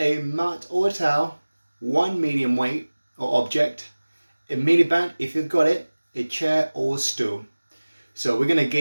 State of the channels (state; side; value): inverted; both; correlation -1.00